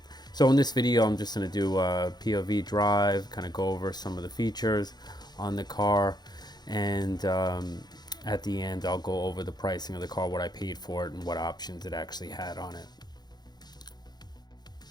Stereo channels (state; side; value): late; right; 0.20 ms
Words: So in this video, I'm just going to do a POV drive, kind of go over some of the features on the car, and at the end, I'll go over the pricing of the car, what I paid for it, and what options it actually had on it.